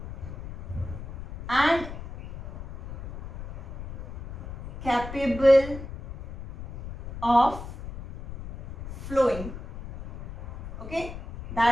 and capable of flowing. Okay,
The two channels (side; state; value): left; noise; rumble, 11 dB below the sound